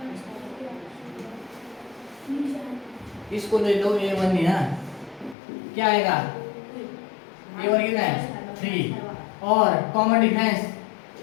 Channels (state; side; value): drops out; right; at 5.4 s